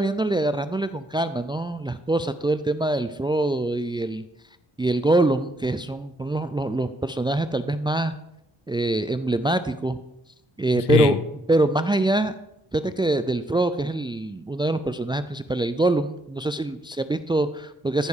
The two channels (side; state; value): both; normal; correlation 0.73